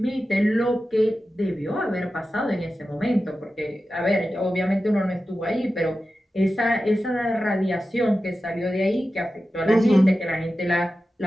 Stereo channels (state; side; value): normal; both; correlation 0.93